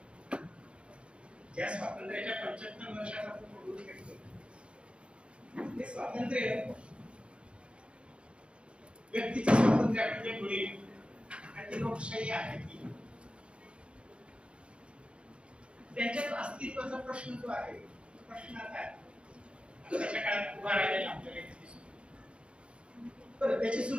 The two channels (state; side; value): late; left; 0.058 ms